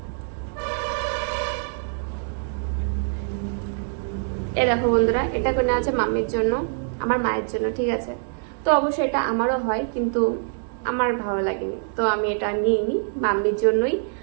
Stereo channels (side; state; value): left; silent; digital silence